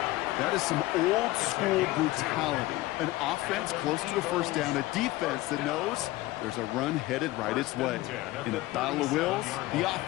That is some old-school brutality. An offense close to a first down, a defense that knows there's a run headed right its way. In a battle of wills, the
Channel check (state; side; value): quieter; right; 18.2 dB